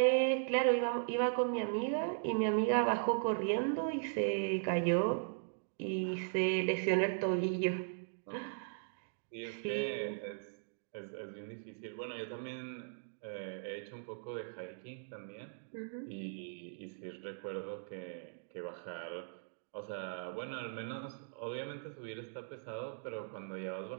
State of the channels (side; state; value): left; silent; digital silence